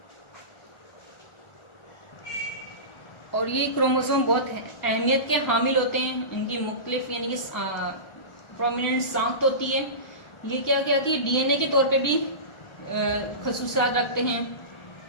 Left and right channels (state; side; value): late; right; 1.4 ms